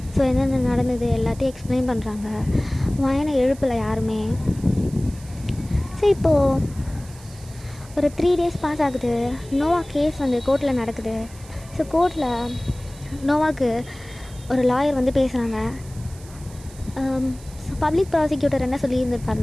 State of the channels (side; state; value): right; noise; hiss, 21 dB below the sound